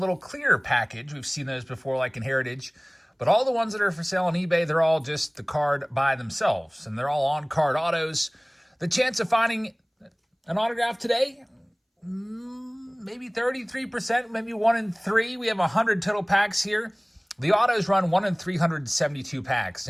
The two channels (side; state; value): both; identical; correlation 1.00